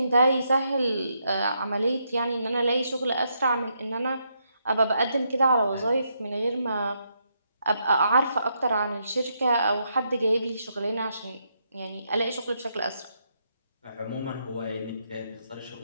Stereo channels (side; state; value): both; inverted; correlation -0.78